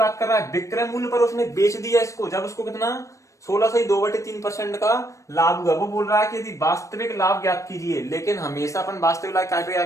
कर रहा है, विक्रय मूल्य पर उसने बेच दिया इसको, जब उसको कितना 16.2/3% का लाभ हुआ। वो बोल रहा है कि यदि वास्तविक लाभ ज्ञात कीजिए, लेकिन हमेशा अपन वास्तविक लाभ काय पे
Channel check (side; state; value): right; late; 0.15 ms